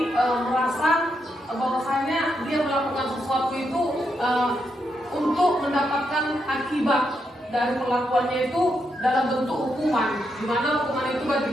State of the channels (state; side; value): normal; both; correlation 0.81